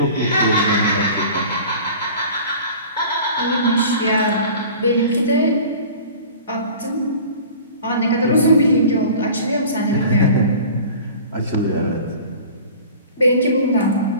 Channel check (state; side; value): inverted; both; correlation -0.42